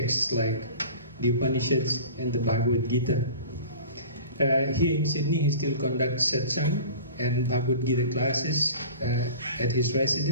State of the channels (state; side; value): inverted; both; correlation -0.39